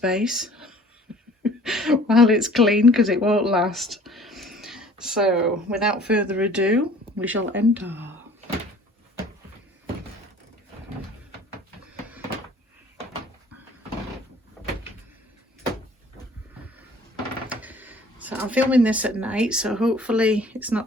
while it's clean, because it won't last. So without further ado, we shall enter. So I'm filming this at night, so hopefully it's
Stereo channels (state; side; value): normal; both; correlation 0.51